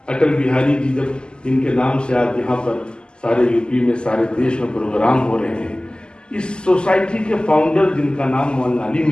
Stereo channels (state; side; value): late; right; 0.048 ms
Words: اٹل بہاری جی جب ان کے نام سے آج یہاں پر سارے یو پی میں, سارے دیش میں پروگرام ہو رہے ہیں, اس سوسائٹی کے فاؤنڈر جن کا نام مولانا علی